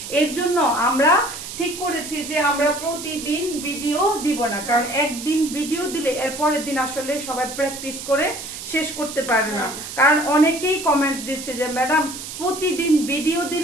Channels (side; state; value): right; noise; hiss, 10 dB below the sound